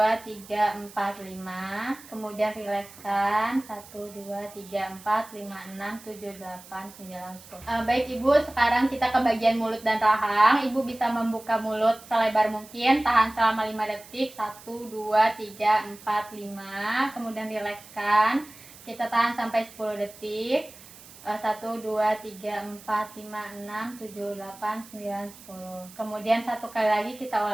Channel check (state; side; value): noise; right; hiss, 20 dB below the sound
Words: 3, 4, 5. Kemudian rilekskan. 1, 2, 3, 4, 5, 6, 7, 8, 9, 10. Baik Ibu, sekarang kita ke bagian mulut dan rahang. Ibu bisa membuka mulut selebar mungkin. Tahan selama 5 detik. 1, 2, 3, 4, 5. Kemudian rilekskan. Kita tahan sampai 10 detik. 1, 2, 3, 4, 5, 6, 7, 8, 9, 10. Kemudian satu kali lagi kita